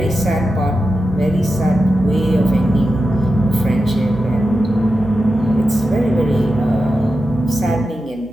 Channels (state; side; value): normal; both; correlation 0.90